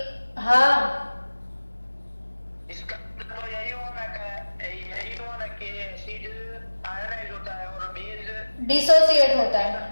हाँ, इसका तो यही हुआ ना कि एसिड आयोनाइज होता है और बेस डिसोसिएट होता है।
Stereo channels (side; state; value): both; inverted; correlation -1.00